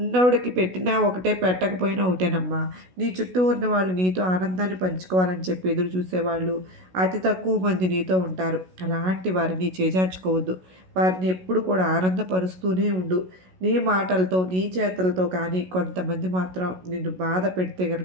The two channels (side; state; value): left; late; 16 ms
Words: పెట్టినా ఒకటే, పెట్టకపోయినా ఒకటేనమ్మా. నీ చుట్టూ ఉన్నవాళ్ళు నీతో ఆనందాన్ని పంచుకోవాలని చెప్పి ఎదురు చూసేవాళ్ళు అతి తక్కువ మంది నీతో ఉంటారు. అలాంటి వారిని చేజార్చుకోవద్దు. వారిని ఎప్పుడు కూడా ఆనందపరుస్తూనే ఉండు. నీ మాటలతో నీ చేతలతో. కానీ కొంతమంది మాత్రం నిన్ను బాధ పెడితే